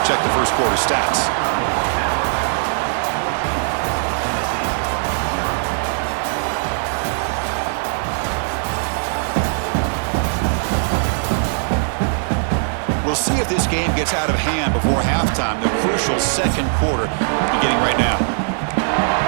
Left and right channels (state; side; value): silent; left; 66 dB below the other